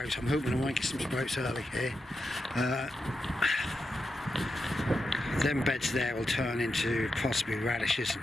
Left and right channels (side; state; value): both; normal; correlation 0.88